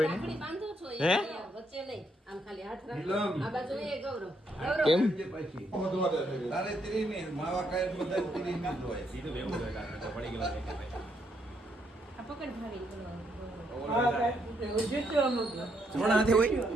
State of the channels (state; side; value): normal; both; correlation 0.75